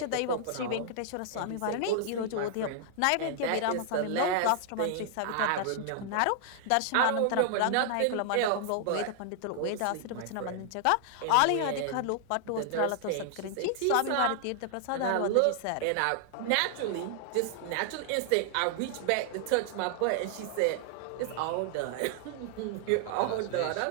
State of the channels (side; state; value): both; different; correlation 0.00